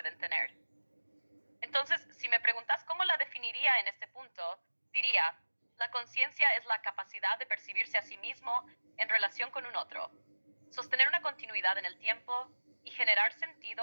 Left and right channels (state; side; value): inverted; both; correlation -1.00